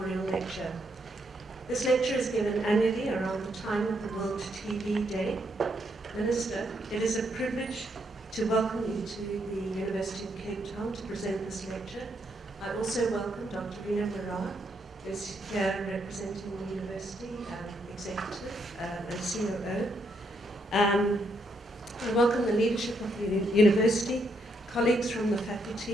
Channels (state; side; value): normal; both; correlation 0.76